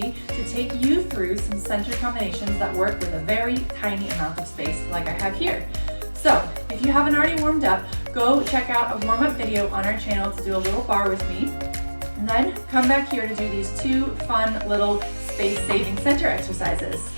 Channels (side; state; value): both; inverted; correlation -1.00